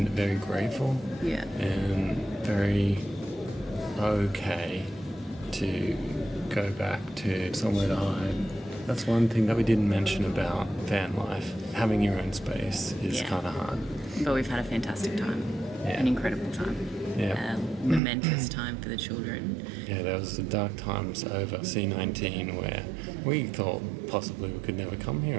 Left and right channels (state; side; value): drops out; left; at 18.0 s